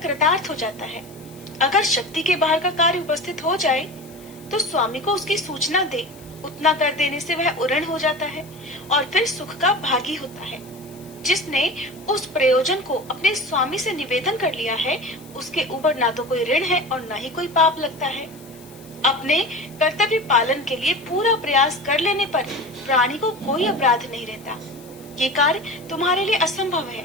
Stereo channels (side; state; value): left; noise; hiss, 23 dB below the sound